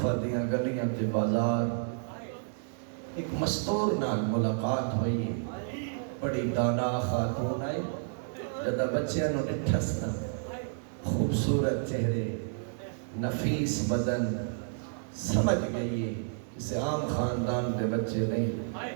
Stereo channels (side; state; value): left; silent; 57 dB below the other